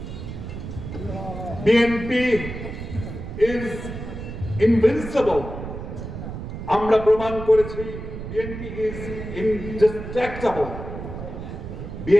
বিএনপি ইজ ইনভিনসিবল, আমরা প্রমাণ করেছি বিএনপি ইজ ইনডিস্ট্রাক্টেবল,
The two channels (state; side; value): noise; right; rumble, 8 dB below the sound